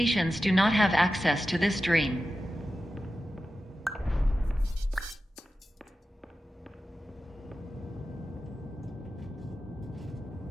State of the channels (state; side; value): normal; both; correlation 0.93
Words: do not have access to this dream.